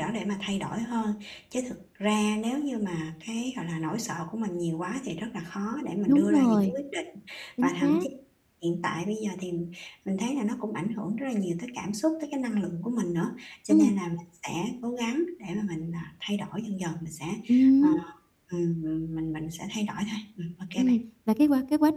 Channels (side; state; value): both; identical; correlation 1.00